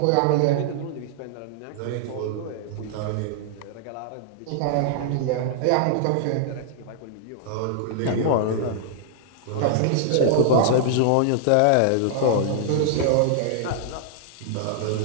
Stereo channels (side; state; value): both; different; correlation -0.01